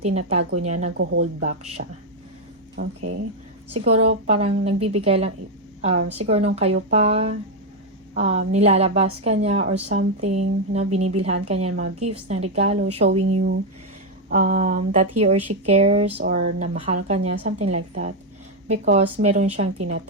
niya, nag-hold back siya. Okay? Siguro parang nagbibigay lang, siguro nung kayo pa, nilalabas ka niya or something, binibilhan ka niya ng mga gifts, ng regalo, showing you that he or she cares or na mahal ka niya, something like that. Because meron siyang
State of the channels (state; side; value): normal; both; correlation 0.03